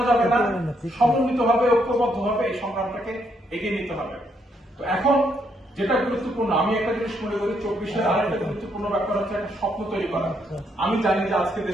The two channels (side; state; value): both; normal; correlation 0.75